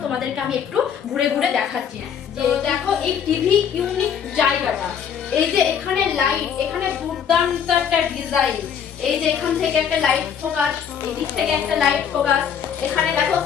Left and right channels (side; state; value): right; quieter; 7.9 dB